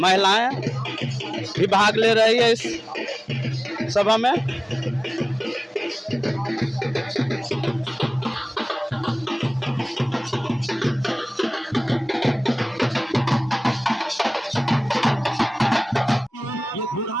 महिलाएं भी भाग ले रही है इस सभा में।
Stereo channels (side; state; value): both; normal; correlation 0.98